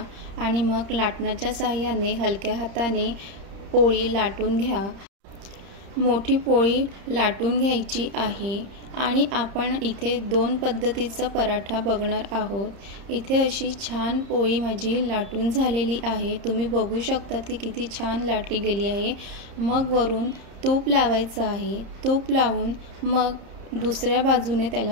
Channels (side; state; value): left; late; 30 ms